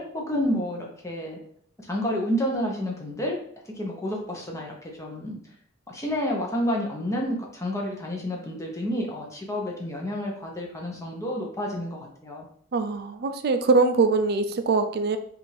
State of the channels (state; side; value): normal; both; correlation 0.23